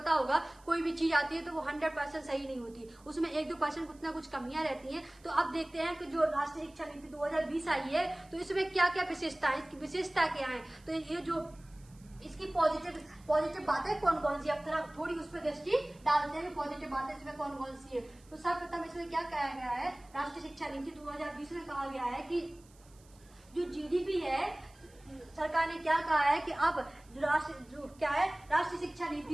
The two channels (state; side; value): noise; right; hiss, 28 dB below the sound